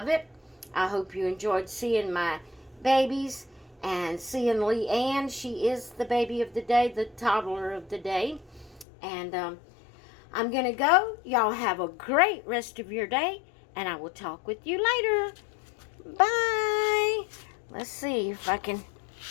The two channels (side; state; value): right; drops out; at 8.8 s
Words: it. I hope you enjoyed seeing my babies and seeing Leanne. She is the baby of the day, the toddler of the day. And I'm going to go. Y'all have a great rest of your day, and I will talk with you later. Bye. Let's see if I can